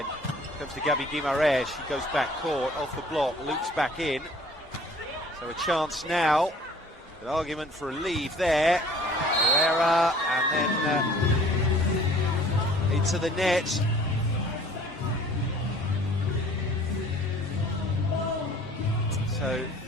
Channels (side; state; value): both; normal; correlation 0.52